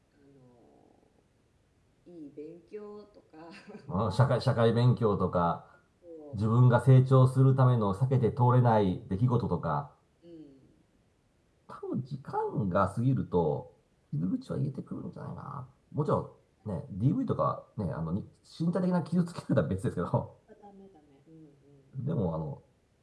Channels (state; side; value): identical; both; correlation 1.00